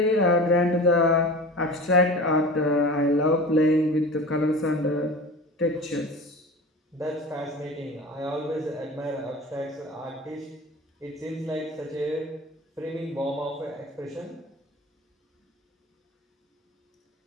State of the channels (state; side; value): normal; both; correlation 0.35